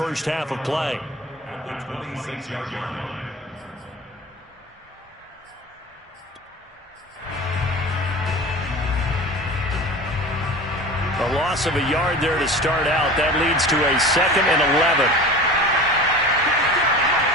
half of play. At the 26-yard line. A loss of a yard there to start out. That leads to a 2nd and 11.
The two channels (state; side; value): normal; both; correlation 0.36